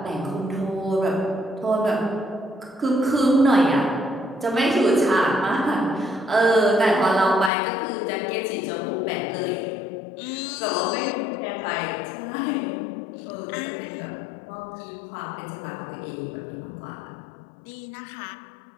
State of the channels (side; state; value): right; drops out; at 7.5 s